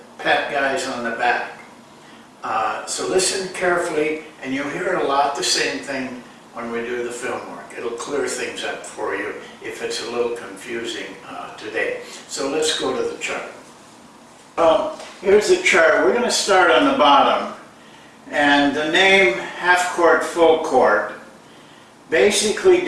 pat guys on the back. So listen carefully, and you'll hear a lot the same thing when we do the film work. It'll clear things up for you if it's a little confusing today. So let's go to the chart. Here's the chart. We're going to start on the bottom. And the name half court, full court basically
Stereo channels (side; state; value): both; identical; correlation 1.00